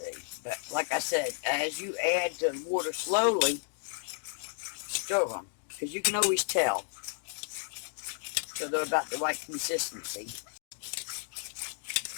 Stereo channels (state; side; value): silent; right; 56 dB below the other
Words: But like I said, as you add the water slowly, stir them. Because you can always tell. So they're about the right consistency.